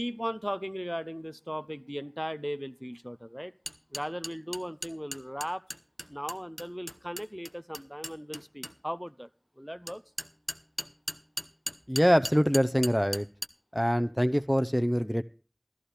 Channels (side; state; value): both; identical; correlation 1.00